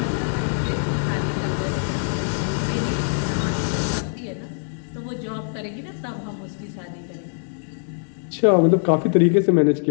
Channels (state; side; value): silent; right; 63 dB below the other